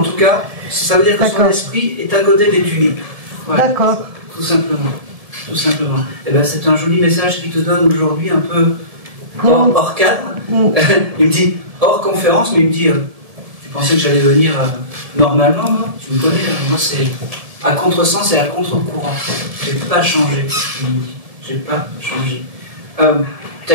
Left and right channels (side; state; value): left; late; 1.7 ms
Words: tout cas, ça veut dire que son esprit est à côté des tulipes. Voilà. D'accord. Tout simplement. Tout simplement. Et ben, c'est un joli message qu'il te donne aujourd'hui, un peu hors cadre. Il me dit, hors conférence, mais il me dit, tu pensais que j'allais venir normalement, moi? Tu me connais, moi c'est à contresens et à contre-courant. J'ai pas changé, il me dit. J'ai pas changé. T'as